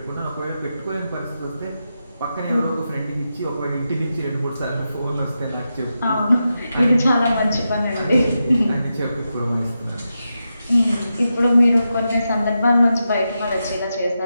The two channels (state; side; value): inverted; both; correlation -0.88